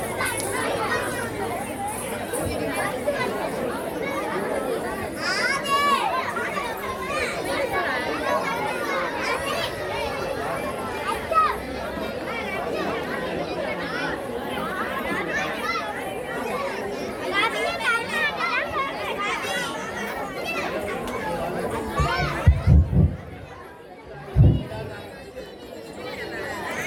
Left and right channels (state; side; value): identical; both; correlation 1.00